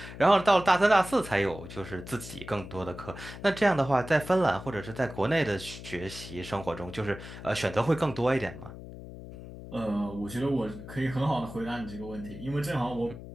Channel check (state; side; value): noise; left; hum, 13 dB below the sound